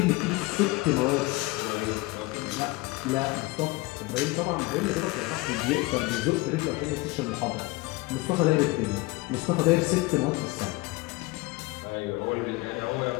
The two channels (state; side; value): quieter; right; 22.0 dB